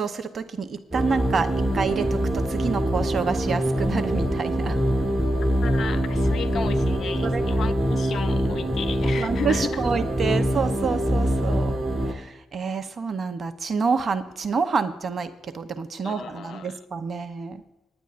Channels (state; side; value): normal; both; correlation 0.88